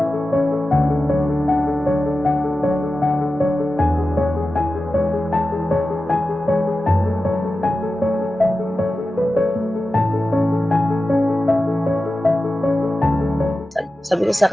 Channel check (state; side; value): normal; both; correlation 0.93